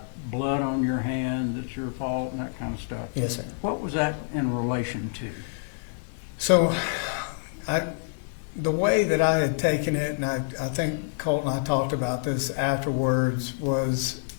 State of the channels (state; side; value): silent; right; 60 dB below the other